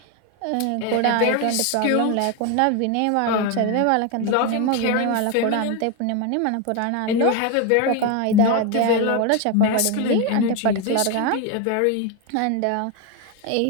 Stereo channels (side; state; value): both; different; correlation 0.01